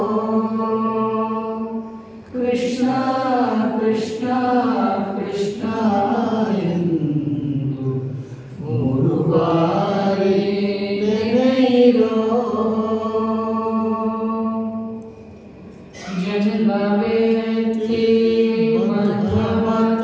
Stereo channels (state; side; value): identical; both; correlation 1.00